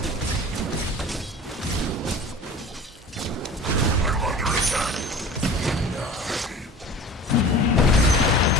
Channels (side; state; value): both; normal; correlation 0.40